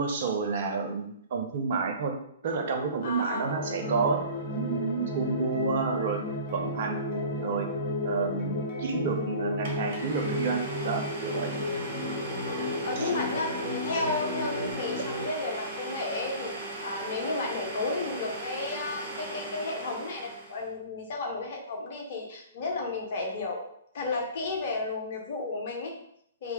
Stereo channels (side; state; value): both; inverted; correlation -0.41